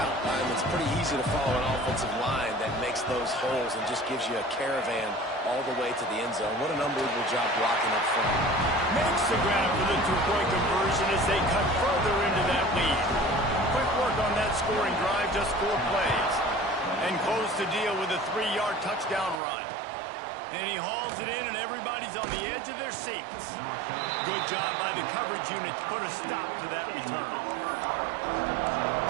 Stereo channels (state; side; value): drops out; left; at 19.4 s